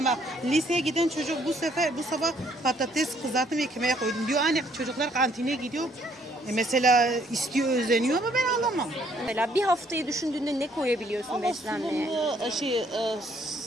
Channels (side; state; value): both; normal; correlation 0.66